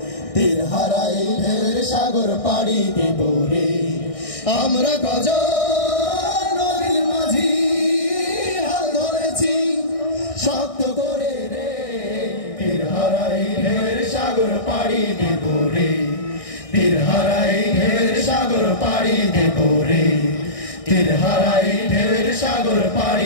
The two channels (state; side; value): late; right; 1.6 ms